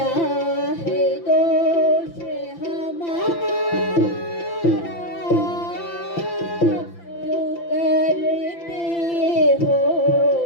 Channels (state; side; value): late; right; 5.9 ms